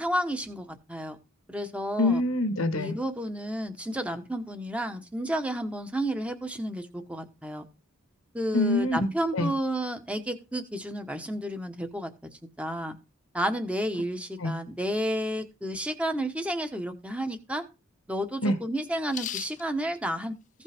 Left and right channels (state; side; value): normal; both; correlation 0.67